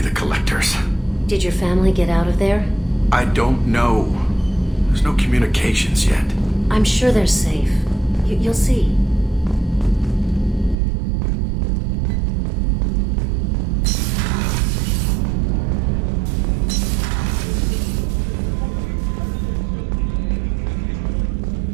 the Collectors. Did your family get out of there? I don't know. There's no communications yet. I'm sure they're safe. You'll see.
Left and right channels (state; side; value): drops out; left; at 10.8 s